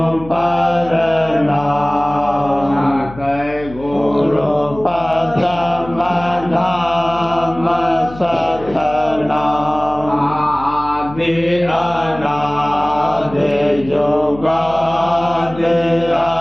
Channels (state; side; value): noise; left; hum, 16 dB below the sound